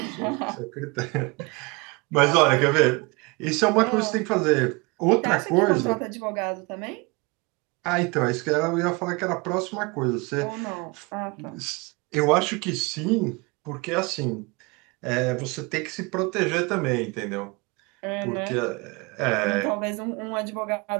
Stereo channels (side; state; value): left; quieter; 27.4 dB